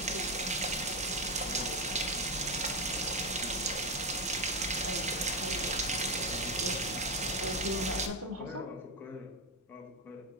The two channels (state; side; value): normal; both; correlation 0.10